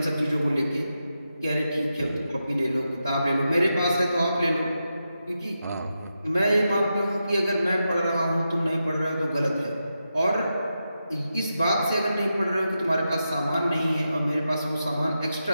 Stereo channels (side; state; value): both; inverted; correlation -0.88